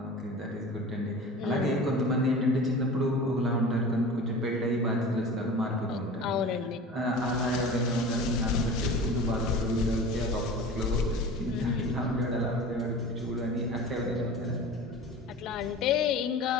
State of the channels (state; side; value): normal; both; correlation 0.36